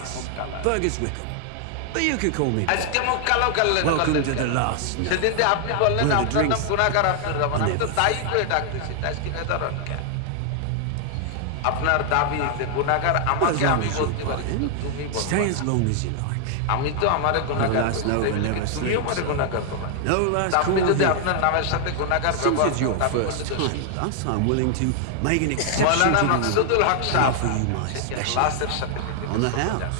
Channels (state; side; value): different; both; correlation 0.00